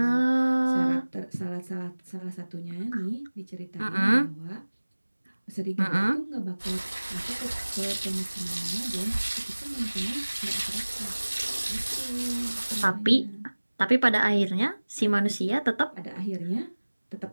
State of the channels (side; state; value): both; inverted; correlation -1.00